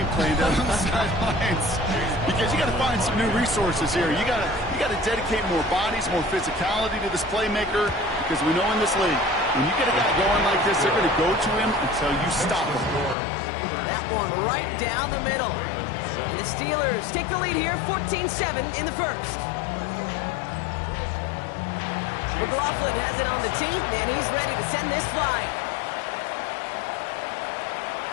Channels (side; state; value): right; drops out; at 13.2 s